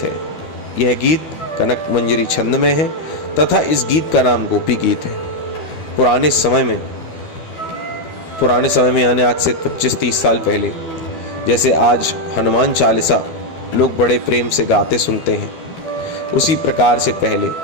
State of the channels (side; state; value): right; late; 12 ms